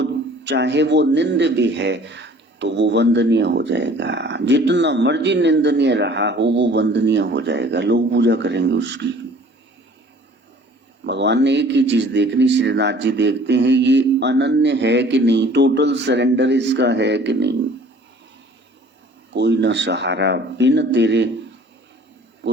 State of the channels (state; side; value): normal; both; correlation 0.51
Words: चाहे वो निंद भी है तो वो वंदनीय हो जाएगा। जितना मर्जी निंदनीय रहा हो वो वंदनीय हो जाएगा, लोग पूजा करेंगे उसकी। भगवान ने एक ही चीज देखनी, श्रीनाथ जी देखते हैं ये अनन्य है कि नहीं, टोटल सरेंडर इसका है कि नहीं। कोई न सहारा बिन तेरे,